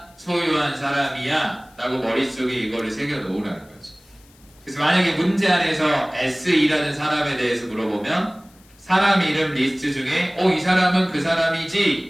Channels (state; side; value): noise; left; hiss, 29 dB below the sound